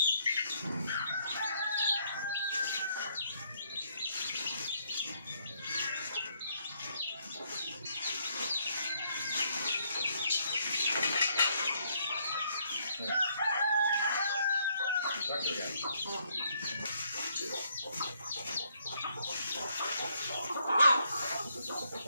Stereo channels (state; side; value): inverted; both; correlation -0.71